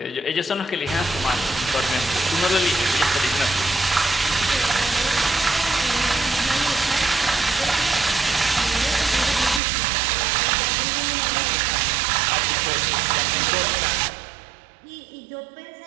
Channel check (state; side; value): drops out; left; at 9.6 s